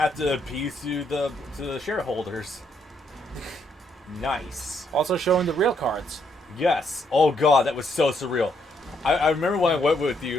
to appease to the shareholders. Nice. Also showing the real cards. Yes. Oh God, that was so surreal. I remember when I went with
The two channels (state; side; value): normal; both; correlation 0.74